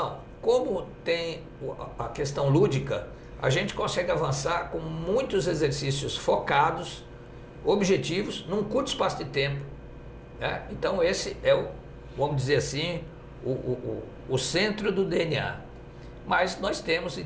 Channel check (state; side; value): identical; both; correlation 1.00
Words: Como tem a questão lúdica, a gente consegue avançar com muitos exercícios focados, objetivos, num curto espaço de tempo. Né? Então, esse é vamos dizer assim, o centro do DNA. Mas nós temos,